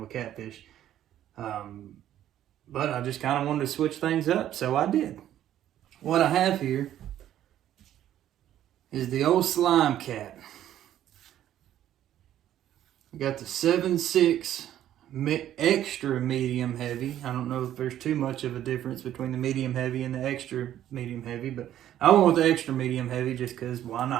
Catfish. But I just kind of wanted to switch things up, so I did. What I have here is the old SlimeCat. I got the 7.6 extra medium heavy. I don't know if there's too much of a difference between the medium heavy and the extra medium heavy, but I went with the extra medium heavy just because why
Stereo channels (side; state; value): left; quieter; 11.8 dB